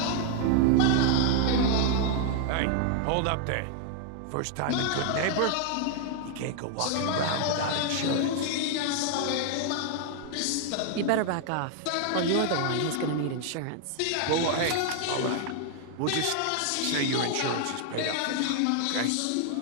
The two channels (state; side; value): different; both; correlation 0.00